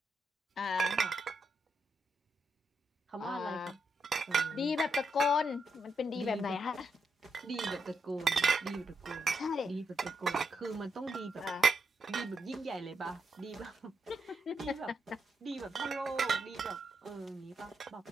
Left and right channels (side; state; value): both; normal; correlation 0.81